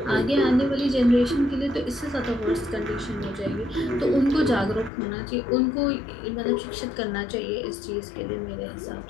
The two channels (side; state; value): right; drops out; at 4.9 s